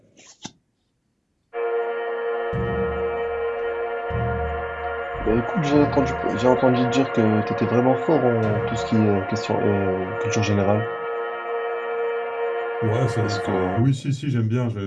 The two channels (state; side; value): identical; both; correlation 1.00